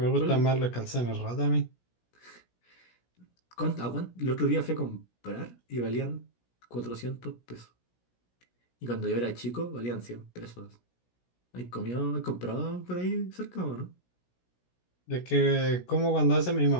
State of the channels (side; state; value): right; late; 17 ms